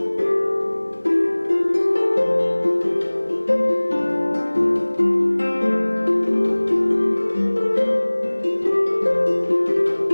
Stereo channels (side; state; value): both; inverted; correlation -1.00